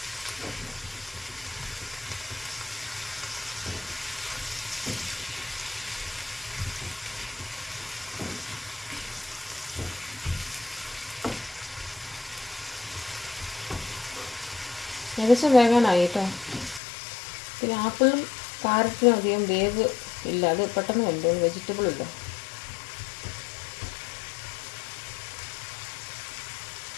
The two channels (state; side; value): drops out; right; at 16.8 s